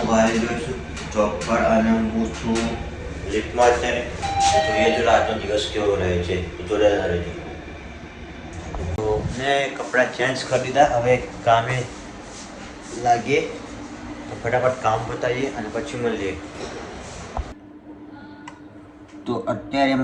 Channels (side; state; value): both; identical; correlation 1.00